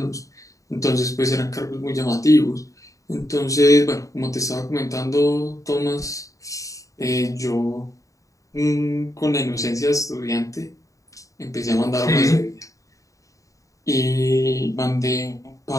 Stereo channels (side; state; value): right; late; 0.16 ms